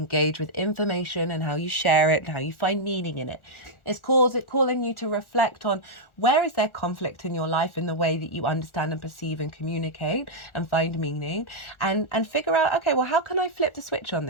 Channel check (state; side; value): late; right; 1.4 ms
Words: with information and how you share it and how you find meaning in it. It's calling you to reflect on where is there conflict in your life in the way that you understand and perceive and communicate and find meaning, and figure out, okay, well, how can I flip the switch on